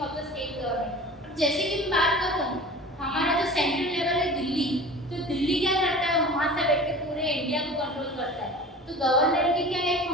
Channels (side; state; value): both; normal; correlation 0.39